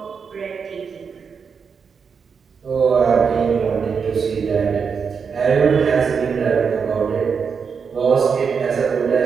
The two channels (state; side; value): quieter; left; 6.0 dB